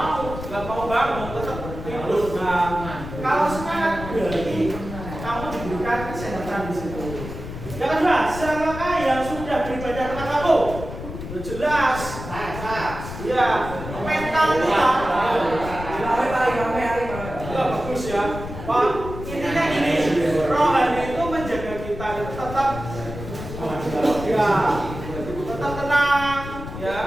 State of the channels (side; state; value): left; noise; rumble, 9 dB below the sound